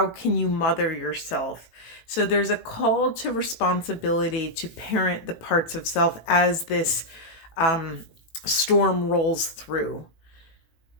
can you mother yourself? So there's a call to responsibility to parent the parts of self as this storm rolls through.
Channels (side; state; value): right; late; 18 ms